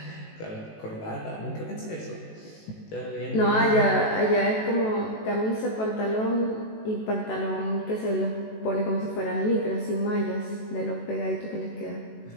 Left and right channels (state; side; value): late; right; 18 ms